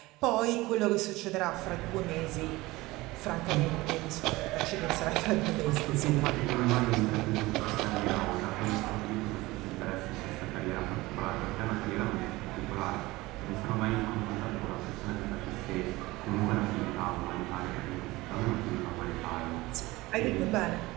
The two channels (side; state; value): left; quieter; 20.3 dB